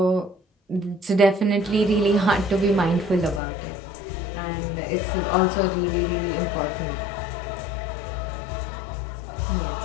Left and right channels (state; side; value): drops out; right; at 3.4 s